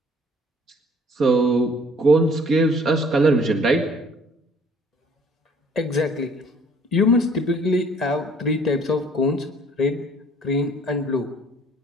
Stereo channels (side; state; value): both; normal; correlation 0.56